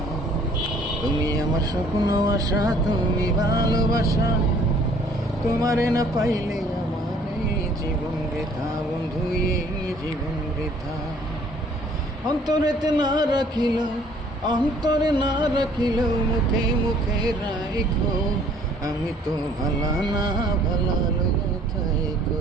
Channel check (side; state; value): both; normal; correlation 0.58